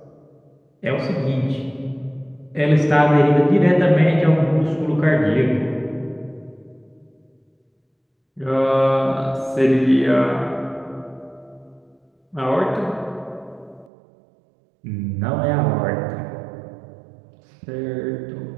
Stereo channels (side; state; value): left; drops out; at 13.9 s